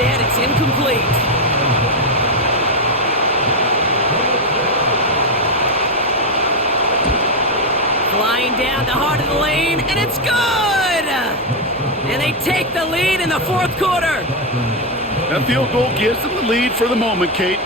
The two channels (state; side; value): normal; both; correlation 0.06